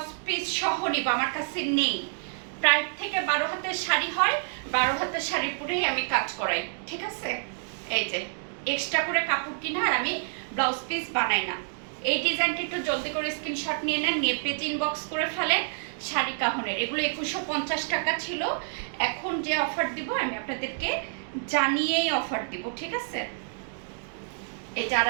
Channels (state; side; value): silent; left; digital silence